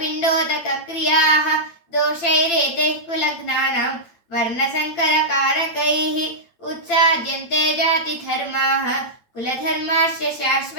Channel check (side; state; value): right; late; 8.9 ms